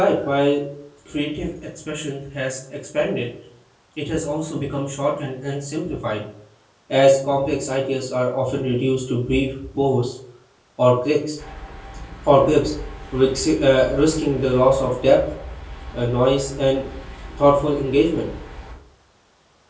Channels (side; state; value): both; identical; correlation 1.00